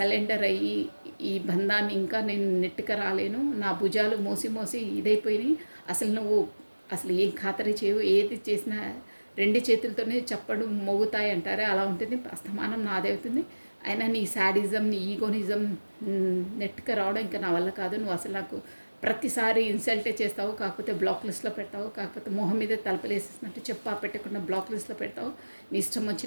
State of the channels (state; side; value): inverted; both; correlation -1.00